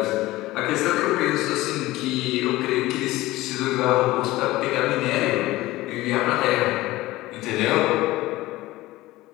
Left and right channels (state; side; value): quieter; right; 18.1 dB